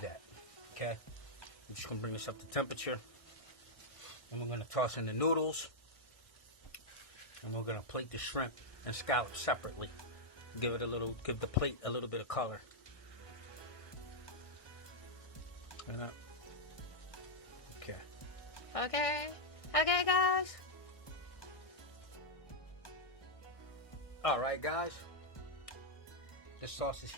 okay? I'm just going to bring this up to temperature. And we're going to toss in the noodles. And we're going to plate the shrimp and scallops separately. Give the plate a little bit of color. Okay. Okay. Okay, guys. Alright, guys. This sauce is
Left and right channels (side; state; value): right; late; 1.6 ms